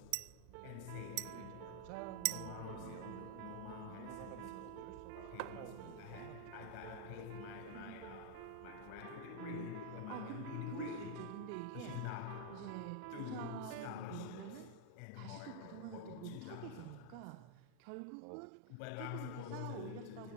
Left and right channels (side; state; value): both; different; correlation 0.00